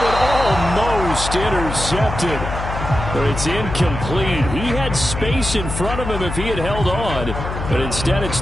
one almost intercepted. But it's incomplete. He had space in front of him if he had held on, but instead it's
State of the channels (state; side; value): noise; left; hum, 6 dB below the sound